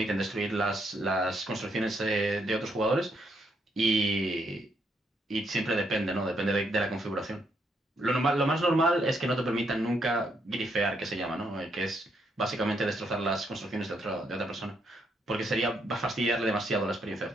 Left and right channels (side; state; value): both; normal; correlation 0.75